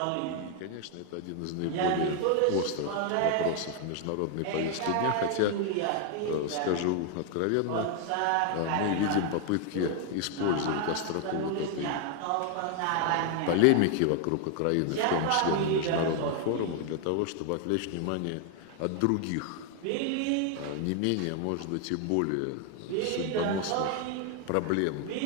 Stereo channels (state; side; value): different; both; correlation 0.00